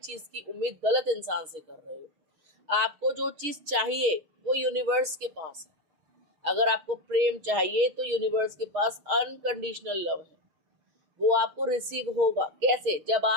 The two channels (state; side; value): late; left; 6.5 ms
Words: चीज़ की उम्मीद गलत इंसान से कर रहे हो। आपको जो चीज़ चाहिए वो यूनिवर्स के पास है। अगर आपको प्रेम चाहिए तो यूनिवर्स के पास अनकंडीशनल लव है, वो आपको रिसीव होगा। कैसे? जब